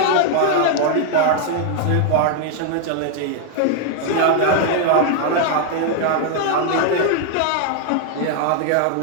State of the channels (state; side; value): different; both; correlation 0.00